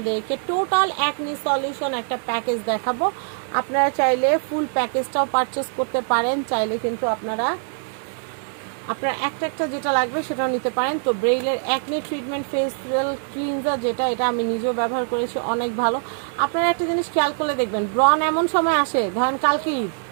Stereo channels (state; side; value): silent; left; 62 dB below the other